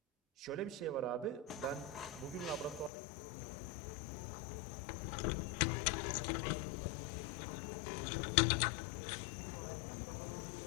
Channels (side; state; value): right; drops out; at 2.9 s